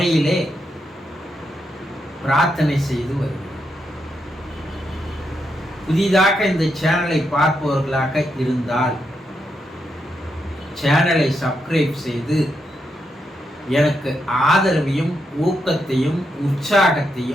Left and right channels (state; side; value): normal; both; correlation 0.82